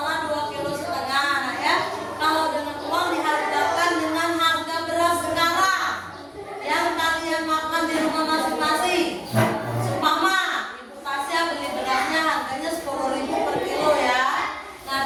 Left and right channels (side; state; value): both; identical; correlation 1.00